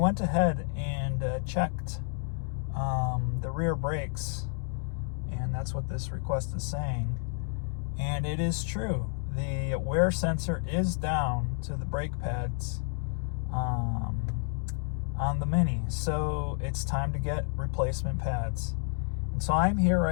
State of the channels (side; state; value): right; silent; 58 dB below the other